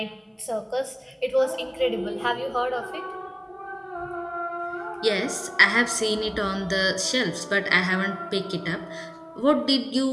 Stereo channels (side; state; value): both; identical; correlation 1.00